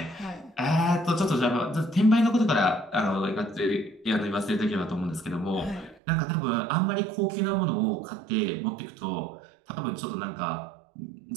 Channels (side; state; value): left; drops out; at 6.0 s